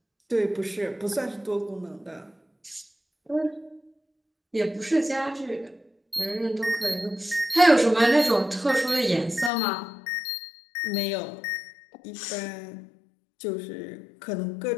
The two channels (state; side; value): drops out; right; at 9.5 s